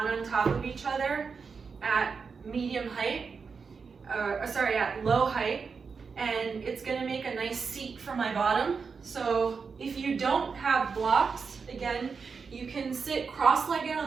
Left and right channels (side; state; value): left; quieter; 5.4 dB